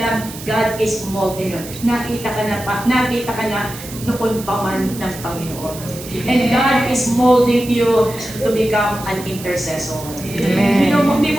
God is molding you. Nakita ka na noon pa man ng Panginoon. And God is molding you to become an intercessor. Amen. Hindi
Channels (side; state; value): right; noise; hiss, 14 dB below the sound